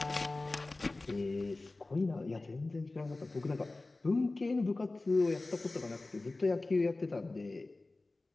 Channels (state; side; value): quieter; right; 3.2 dB